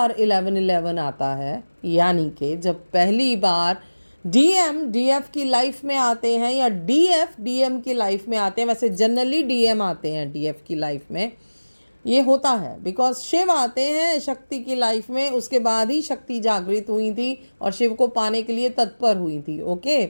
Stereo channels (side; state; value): both; inverted; correlation -1.00